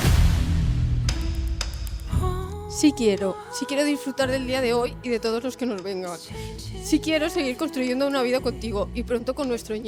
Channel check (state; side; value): identical; both; correlation 1.00